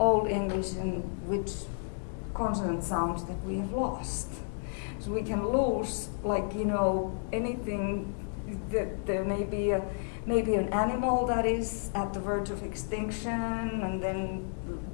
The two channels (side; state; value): right; silent; digital silence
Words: English and which consonant sounds that we have lost. So we can lose, anything. That there may be an animal that is at the verge of extinction, and then